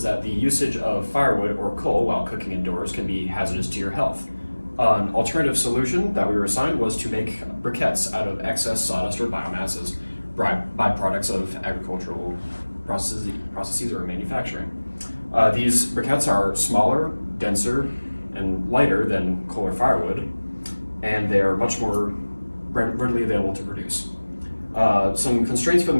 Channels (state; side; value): inverted; both; correlation -1.00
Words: that the usage of firewood or coal while cooking indoors can be hazardous to your health. An alternative solution that we were assigned was to make briquettes out of excess sawdust or biomasses, byproducts of agricultural processes or manufacturing. These briquettes are smaller, denser, and lighter than coal or firewood, and they are much more readily available to produce. Some constraints for the